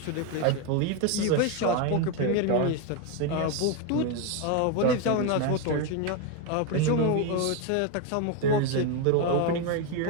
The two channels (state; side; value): different; both; correlation 0.02